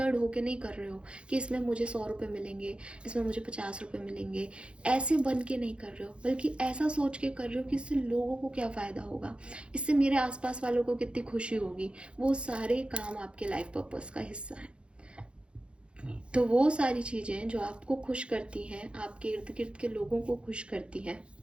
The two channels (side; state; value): left; late; 0.057 ms